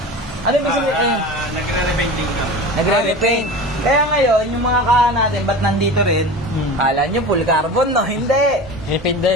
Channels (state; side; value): noise; right; hum, 26 dB below the sound